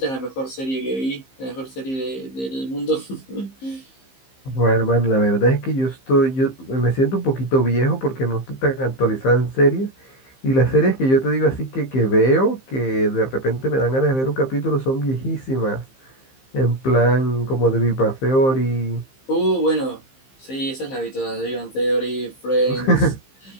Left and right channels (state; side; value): late; right; 15 ms